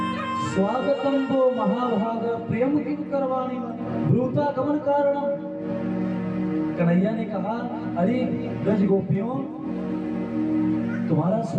स्वागतम वो महाभाग प्रियम किं करवाणि ब्रूता गमन कारणम। कन्हैया ने कहा अरे ब्रज गोपियों तुम्हारा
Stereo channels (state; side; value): identical; both; correlation 1.00